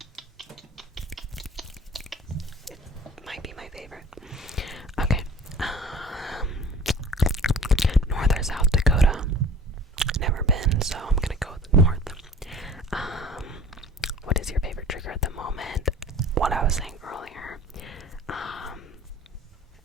It might be my favorite. Okay. North or South Dakota? Never been, so I'm gonna go with North. What is your favorite trigger at the moment? What I was saying earlier.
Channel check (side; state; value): both; normal; correlation 0.46